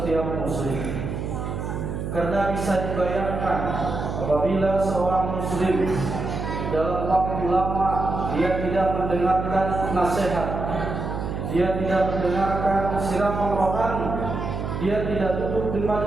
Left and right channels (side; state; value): right; noise; hum, 4 dB below the sound